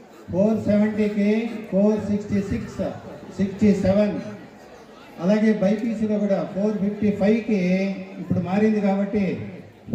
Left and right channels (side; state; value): both; identical; correlation 1.00